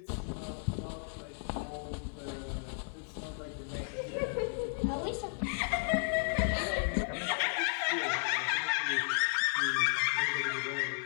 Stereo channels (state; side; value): silent; right; 55 dB below the other